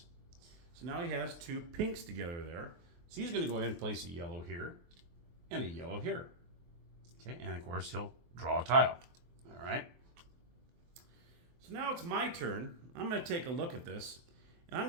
So now he has 2 pinks together there. So he's going to go ahead and place a yellow here and a yellow here. Okay, and of course he'll draw a tile. All right. So now it's my turn. I'm going to take a look at this, and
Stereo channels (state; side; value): late; left; 23 ms